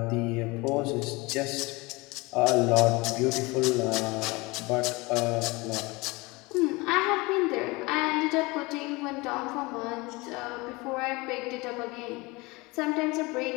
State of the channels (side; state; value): right; quieter; 24.3 dB